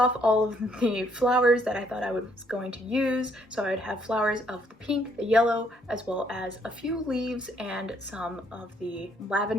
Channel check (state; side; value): normal; both; correlation 0.68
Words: all of the flowers that I thought I was going to use. So I would have flowers of the pink, the yellow, as well as a few leaves and some of the